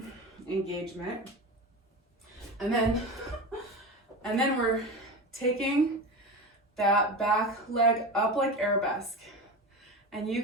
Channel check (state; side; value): normal; both; correlation 0.26